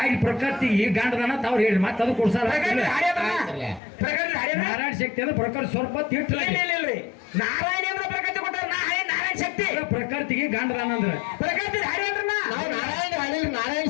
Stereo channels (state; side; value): drops out; right; at 3.8 s